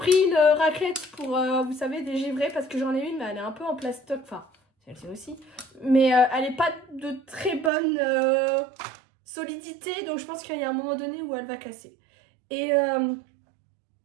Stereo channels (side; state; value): left; drops out; at 7.7 s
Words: une raclette pour, vous savez, dégivrer parce que j'en ai une, mais elle est un peu en plastoc. Enfin, celle-ci aussi. Mais elle n'est pas de très bonne solidité. Donc, je pense qu'il y a un moment donné où elle va casser. Et